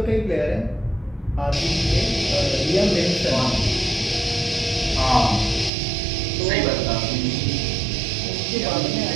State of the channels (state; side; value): drops out; left; at 5.7 s